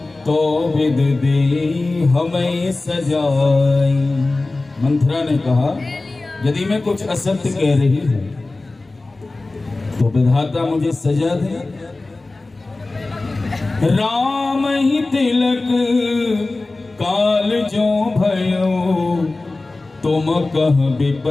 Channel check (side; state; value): right; quieter; 3.2 dB